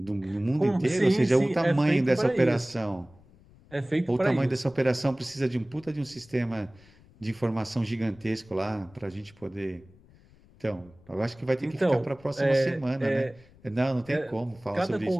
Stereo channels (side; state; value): left; noise; rumble, 27 dB below the sound